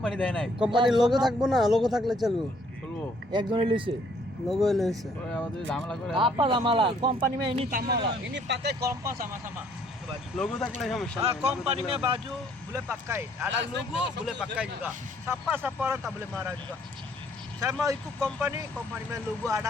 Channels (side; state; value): both; normal; correlation 0.64